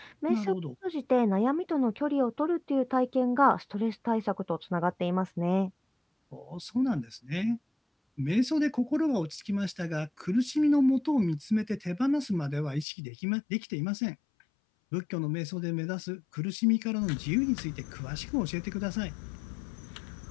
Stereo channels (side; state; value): right; drops out; at 12.9 s